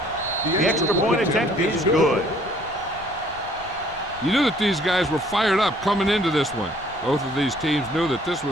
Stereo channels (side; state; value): left; noise; rumble, 20 dB below the sound